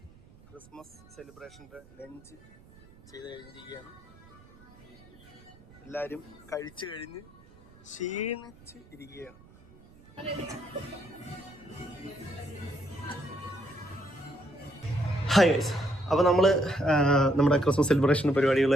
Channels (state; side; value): noise; right; rumble, 25 dB below the sound